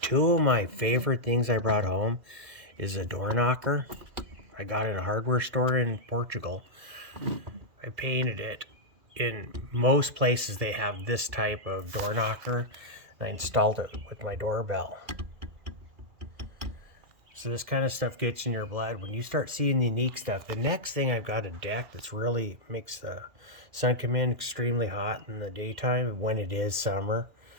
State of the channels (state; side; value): late; left; 2.4 ms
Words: two of my favorite things I brought home is a door knocker. I got it in a hardware store in Portugal. I painted it. In most places they have this type of door knocker. And I installed it with my doorbell. So this kind of stuff gets in your blood. When you start seeing the unique stuff, the next thing I've got a deck that's really makes the sun come in extremely hot in the daytime when it is summer.